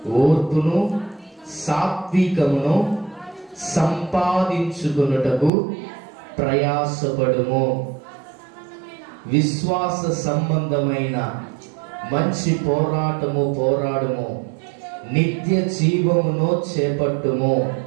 ఓర్పును, సాత్వికమును సంపాదించుకొనుటకు ప్రయాసపడుము. విశ్వాస సంబంధమైన మంచి పోరాడుము. నిత్య జీవమును చేపట్టుము.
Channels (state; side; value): drops out; left; at 5.5 s